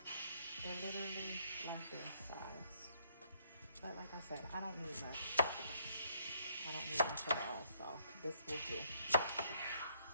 they're literally like this size. But like I said, I don't need much. I don't need much at all, so this will do.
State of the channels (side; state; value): both; inverted; correlation -0.69